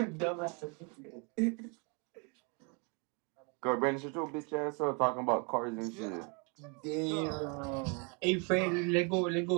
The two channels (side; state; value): left; quieter; 33.8 dB